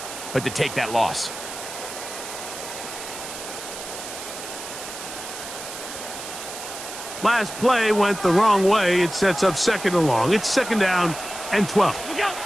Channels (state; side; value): noise; right; hiss, 10 dB below the sound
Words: but to take that loss. Last play went the wrong way. It sets up 2nd and long. It's 2nd down and 12.